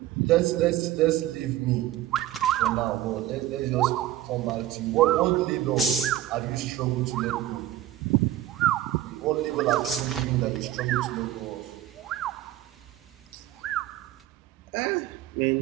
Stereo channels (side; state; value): left; quieter; 13.5 dB